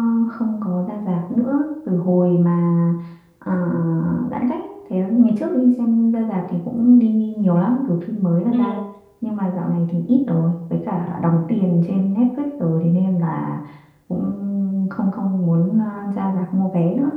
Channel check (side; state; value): both; identical; correlation 1.00